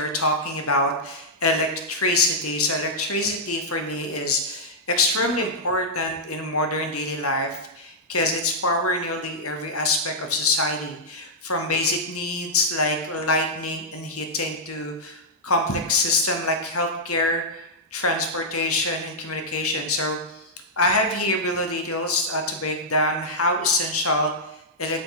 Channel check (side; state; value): both; normal; correlation -0.08